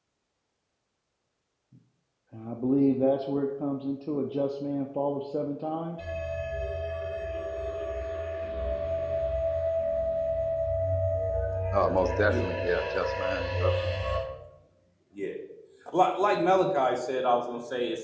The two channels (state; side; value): identical; both; correlation 1.00